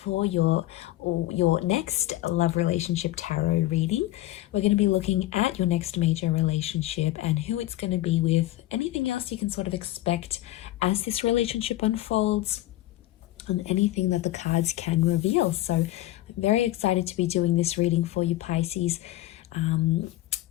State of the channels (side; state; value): right; quieter; 15.7 dB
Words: for your next love relationship tarot reading. We're going to be looking at your next major relationship and who it's going to be with, anything else you can sort of expect as this relationship unfolds, and anything that the cards can reveal. So I'm very excited to be doing this reading for you Pisces.